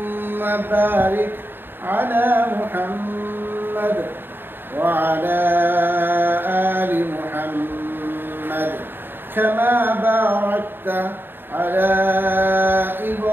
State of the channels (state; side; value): late; left; 0.098 ms